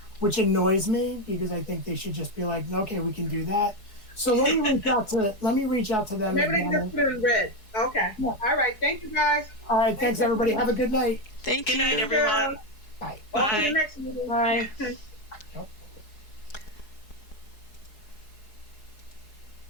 which annoys me because I think they should just be like, okay, we can do that. So let me reach out to them. Maybe they just put it in red. Okay. Yeah. All right. Thank you, guys. All right, thanks everybody. Have a good night. Thank Good you. night, everyone. Bye. On to Bye. the next meeting. Bye.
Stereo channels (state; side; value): late; right; 4.7 ms